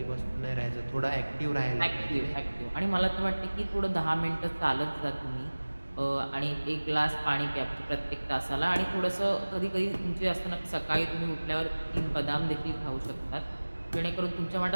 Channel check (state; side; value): inverted; both; correlation -1.00